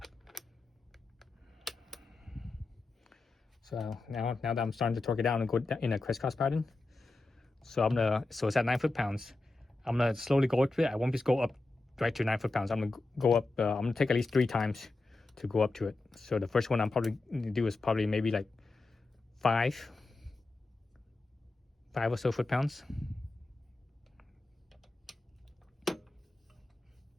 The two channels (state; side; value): quieter; right; 3.2 dB